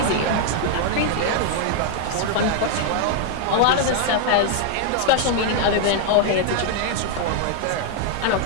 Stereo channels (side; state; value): both; different; correlation 0.00